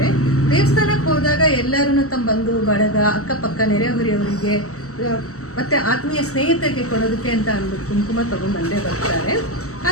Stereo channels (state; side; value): late; right; 0.65 ms